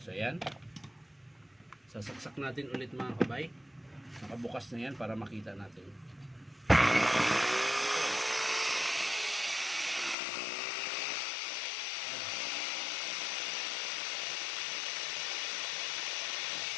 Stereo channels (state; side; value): drops out; right; at 10.2 s